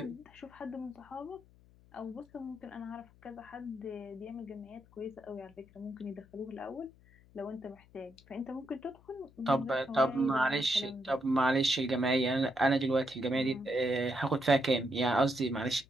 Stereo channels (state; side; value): noise; left; hum, 27 dB below the sound